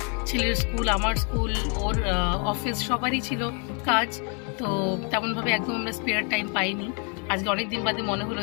ছেলের স্কুল, আমার স্কুল, ওর অফিস, সবারই ছিল কাজ। তো তেমনভাবে একদম আমরা স্পেয়ার টাইম পাইনি। আজকে অনেক দিন বাদে মনে হলো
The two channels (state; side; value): quieter; right; 37.5 dB